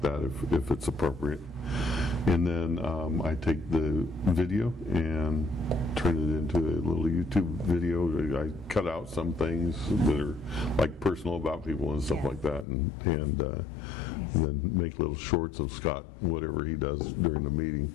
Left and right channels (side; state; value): right; drops out; at 12.7 s